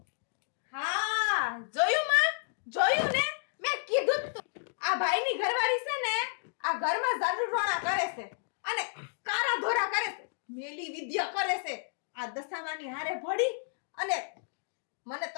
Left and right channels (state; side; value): silent; right; digital silence